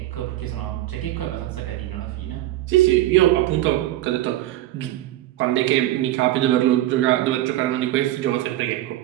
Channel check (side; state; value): left; quieter; 14.9 dB